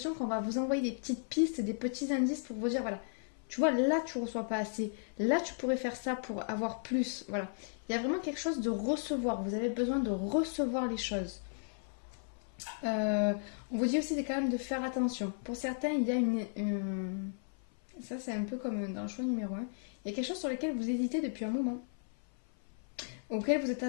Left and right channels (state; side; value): silent; right; 54 dB below the other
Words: qu'on va vous envoyer des petites pistes, des petits indices pour vous dire, voilà, tu vois, là, tu ne reçois pas assez. Là, tu pourrais faire ça pour avoir plus. Voilà. Il y a vraiment quelque chose de recevoir. Vous avez besoin de recevoir les choses. On vous dit aussi quand même de faire attention. Pour certains, il y a ça, c'est un peu comme dans le choix numéro 1. Il y a quelque chose sur lequel vous hésitez depuis un moment. Auquel vous êtes